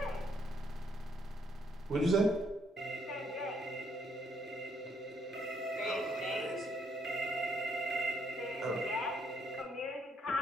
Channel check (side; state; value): both; normal; correlation 0.71